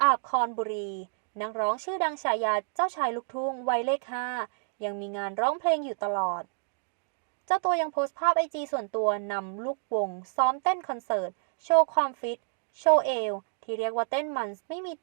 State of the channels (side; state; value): left; silent; digital silence